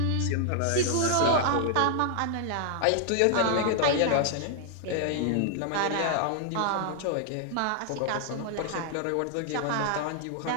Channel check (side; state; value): both; different; correlation 0.00